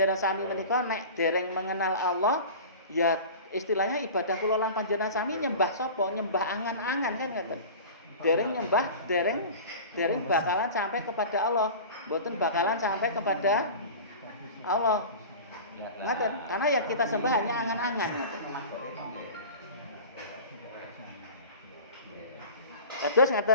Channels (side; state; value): both; inverted; correlation -0.36